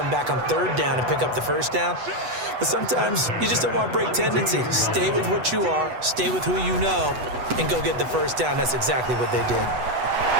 back on 3rd down and pick up the first down. But sometimes you just don't want to break tendency. Stay with what you are, stay with who you know, and go get the first down. That's exactly what they did.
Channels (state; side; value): late; left; 8.1 ms